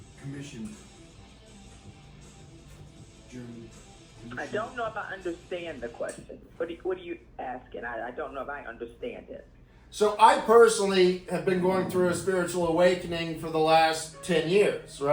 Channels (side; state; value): both; identical; correlation 1.00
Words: Commission. German. I don't know if I understand the question. What are you asking? I don't know if I understand it. So I personally have been going through a spiritual awakening for the last 10 years,